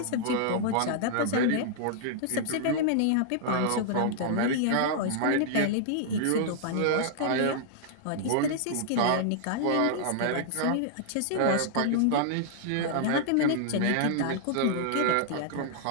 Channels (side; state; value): both; different; correlation -0.01